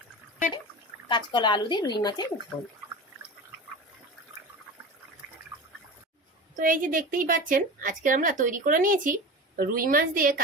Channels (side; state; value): both; normal; correlation 0.30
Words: কাঁচকলা আলু দিয়ে রুই মাছের ঝোল। তো এই যে দেখতেই পাচ্ছেন আজকে আমরা তৈরি করে নিয়েছি রুই মাছ দিয়ে